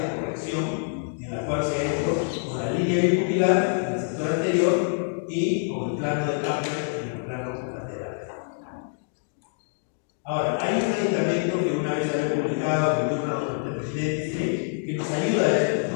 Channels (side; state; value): right; silent; digital silence